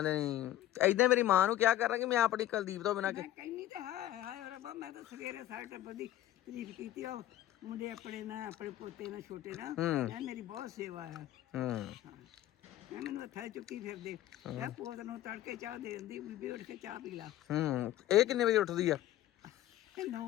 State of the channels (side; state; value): right; quieter; 13.7 dB